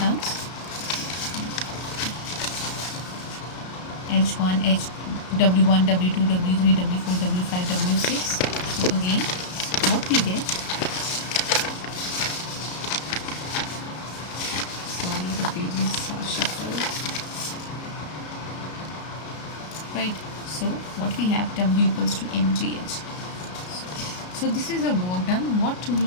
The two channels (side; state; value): right; late; 33 ms